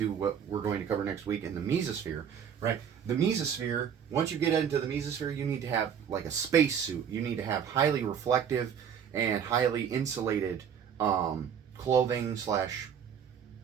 what we're going to cover next week in the mesosphere, right? The mesosphere, once you get into the mesosphere, you need to have like a space suit. You need to have highly reflective and highly insulated clothing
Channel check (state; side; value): quieter; left; 8.1 dB